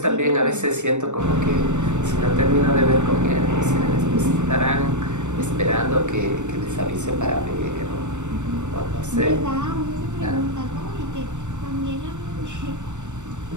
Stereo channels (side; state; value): left; late; 0.84 ms